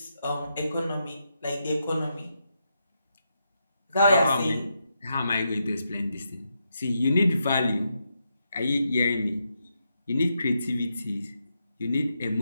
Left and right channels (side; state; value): both; inverted; correlation -0.83